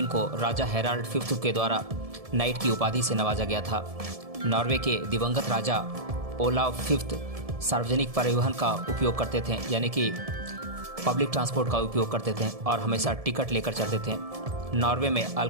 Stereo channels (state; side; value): late; left; 1.7 ms